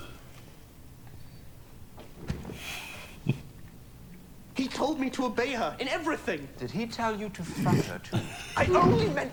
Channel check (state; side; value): identical; both; correlation 1.00